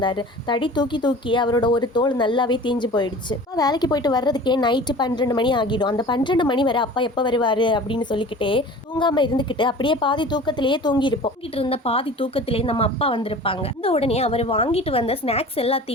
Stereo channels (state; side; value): normal; both; correlation 0.41